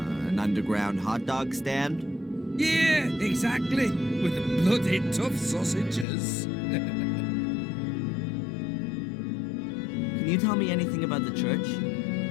underground hot dog stand? Yeah, exactly. With the bloody tough sausages. Can you tell me anything about the church?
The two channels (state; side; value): drops out; right; at 6.1 s